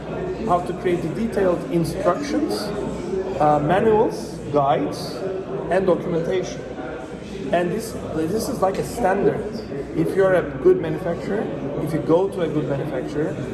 create the detailed instructions, manuals, guides, and documentation. And this is like a standard. If you're a good manufacturer, if you go to a good manufacturer,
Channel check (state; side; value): identical; both; correlation 1.00